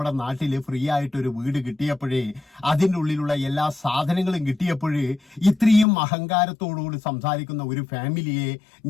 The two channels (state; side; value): drops out; right; at 5.9 s